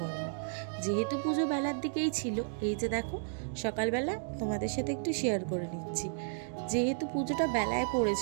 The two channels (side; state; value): left; silent; digital silence